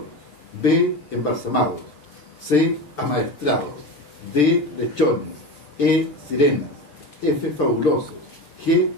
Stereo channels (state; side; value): late; right; 6.8 ms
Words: B, embalsamados, C, amaestrados, D, lechones, E, sirenas, F, fabulosos, G,